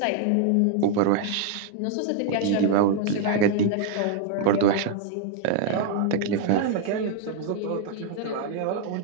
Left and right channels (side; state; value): both; different; correlation 0.00